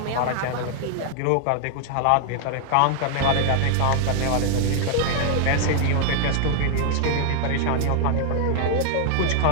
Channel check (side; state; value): both; different; correlation 0.00